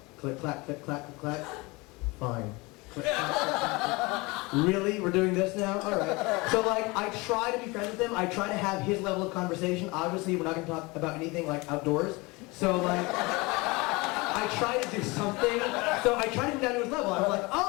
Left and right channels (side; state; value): right; quieter; 24.8 dB